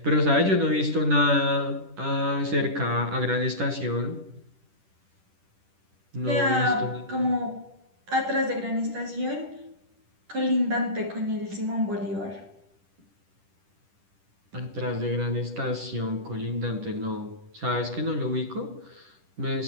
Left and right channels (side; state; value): left; late; 10 ms